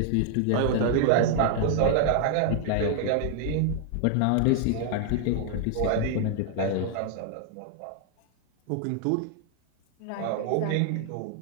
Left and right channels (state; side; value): different; both; correlation 0.00